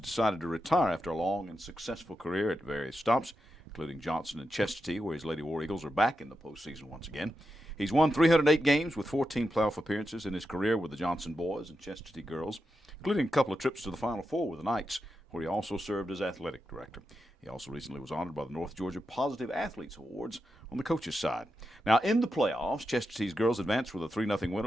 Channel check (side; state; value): both; normal; correlation 0.88